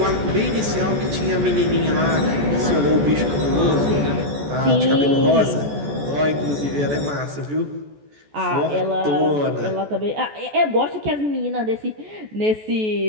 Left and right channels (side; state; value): left; late; 14 ms